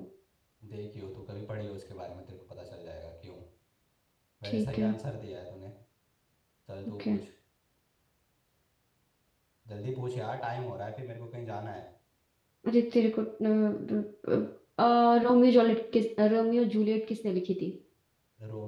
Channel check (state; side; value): identical; both; correlation 1.00